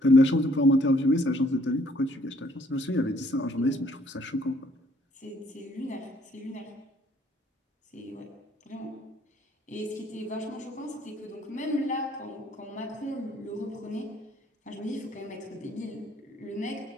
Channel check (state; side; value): normal; both; correlation 0.63